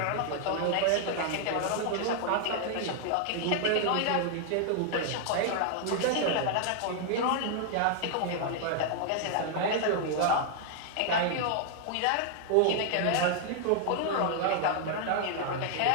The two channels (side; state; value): both; different; correlation 0.00